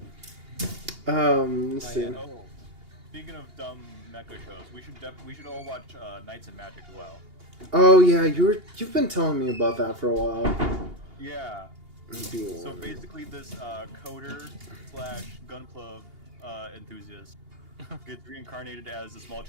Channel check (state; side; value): late; left; 2.8 ms